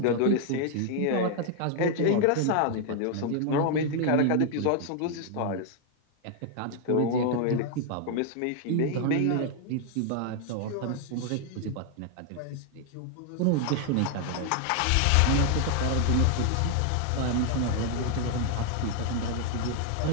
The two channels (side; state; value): both; different; correlation 0.00